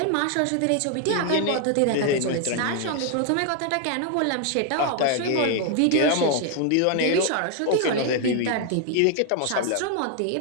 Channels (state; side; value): different; both; correlation 0.00